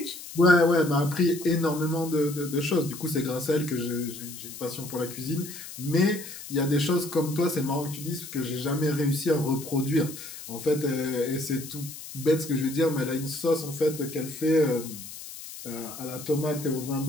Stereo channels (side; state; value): left; noise; hiss, 12 dB below the sound